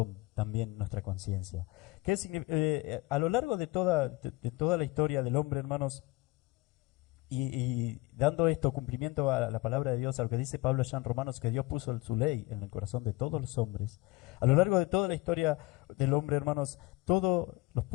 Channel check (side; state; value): right; quieter; 21.2 dB